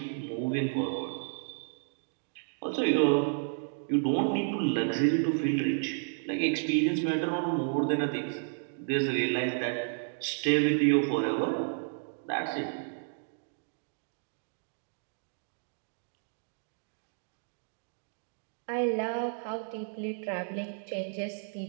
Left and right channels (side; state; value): left; silent; digital silence